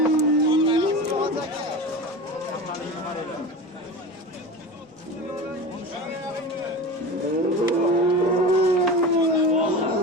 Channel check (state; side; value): normal; both; correlation 0.29